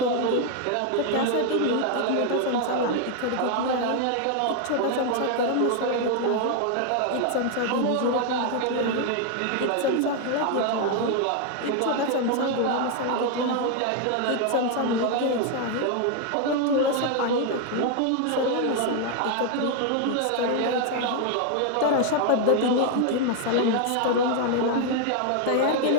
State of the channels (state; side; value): different; both; correlation 0.00